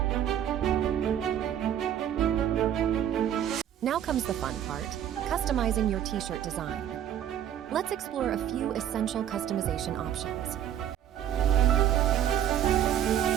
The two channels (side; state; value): left; quieter; 10.3 dB